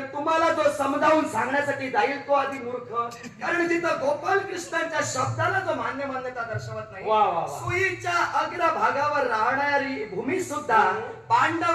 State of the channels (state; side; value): identical; both; correlation 1.00